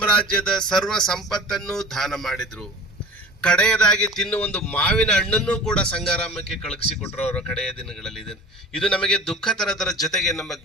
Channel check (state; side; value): normal; both; correlation 0.38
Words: ಸರ್ವ ಸಂಪತ್ತನ್ನು ದಾನ ಮಾಡಿದ್ರು. ಕಡೆಯದಾಗಿ ತಿನ್ನುವ ಒಂದು ಮಾವಿನ ಹಣ್ಣನ್ನು ಕೂಡ ಸಂಗಾರಾಮಕ್ಕೆ ಕಳುಹಿಸಿಕೊಟ್ರು ಅವರ ಕಡೆಯ ದಿನಗಳಲ್ಲಿ. ಇದು ನಮಗೆ ದುಃಖ ತರದರ ಜೊತೆಗೆ ನಮ್ಮ